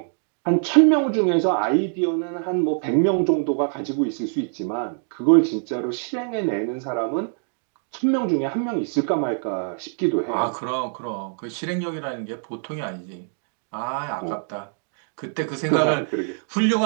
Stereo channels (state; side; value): silent; left; digital silence